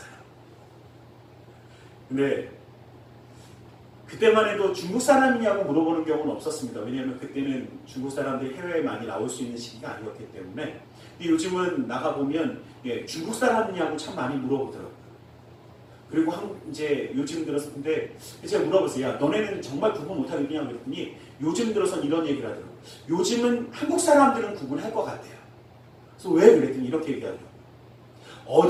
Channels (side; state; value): both; identical; correlation 1.00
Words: 근데 그때만 해도 중국 사람이냐고 물어보는 경우는 없었습니다. 왜냐하면 그때는 중국 사람들이 해외에 많이 나올 수 있는 시기가 아니었기 때문에. 근데 요즘은 나가보면 중국 사람이냐고 참 많이 물어보더라고요. 그리고 이제 요즘 들어서 근데 제가 물어봤어요. 야 너네는 정말 구분 못하겠냐 그랬더니 요즘 들어서는 이런 얘기를 하더라고요. 요즘은 한국 사람들은 구분할 것 같아요. 그래서 왜 그랬더니 이렇게 얘기하더라고요.